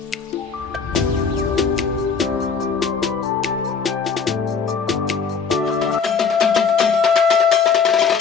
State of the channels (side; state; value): right; quieter; 5.8 dB